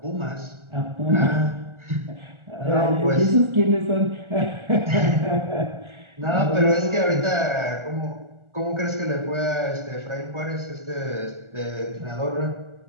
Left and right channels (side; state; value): left; late; 1.4 ms